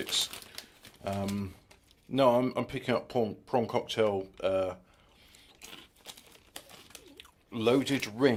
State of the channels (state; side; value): identical; both; correlation 1.00